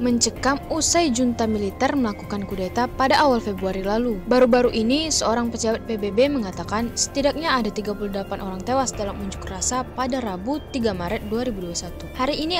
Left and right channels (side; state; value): both; identical; correlation 1.00